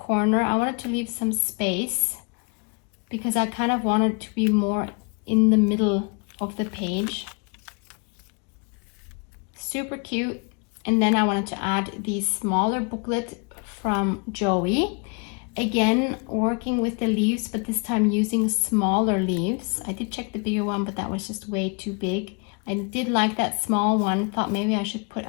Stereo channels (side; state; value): right; quieter; 35.2 dB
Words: I wanted to leave some space because I kind of wanted to be more in the middle of the page. Super cute. And then I wanted to add the smaller booklet from Joey. Again, working with the leaves, but this time using smaller leaves. I did check the bigger one, but that was just way too big. I did like that small one. Thought maybe I should put